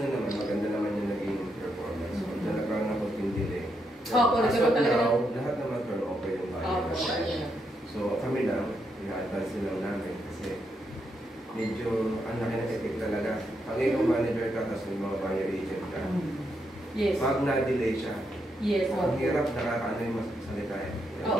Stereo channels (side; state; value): both; normal; correlation 0.80